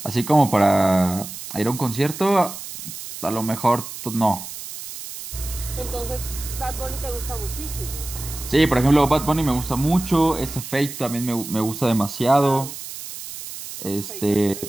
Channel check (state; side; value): noise; right; hiss, 11 dB below the sound